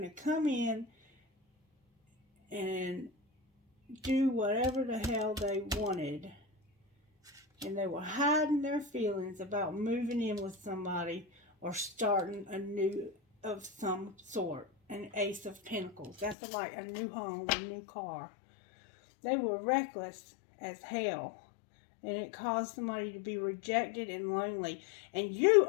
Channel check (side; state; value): right; drops out; at 16.4 s